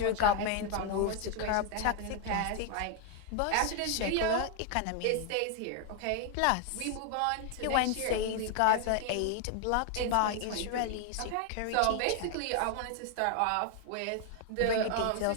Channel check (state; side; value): different; both; correlation 0.00